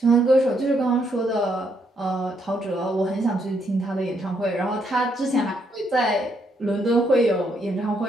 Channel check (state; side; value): normal; both; correlation 0.74